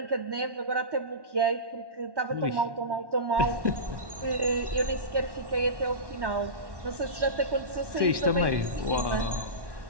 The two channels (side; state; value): left; late; 1.1 ms